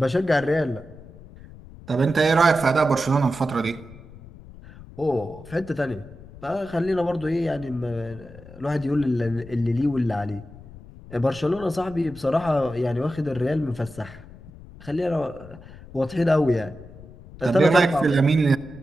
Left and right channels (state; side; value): noise; left; rumble, 18 dB below the sound